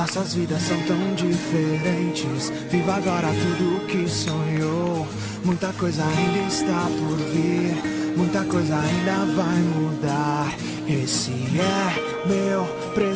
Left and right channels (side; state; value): both; identical; correlation 1.00